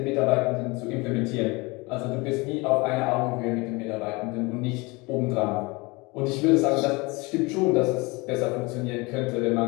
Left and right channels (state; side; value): quieter; right; 25.5 dB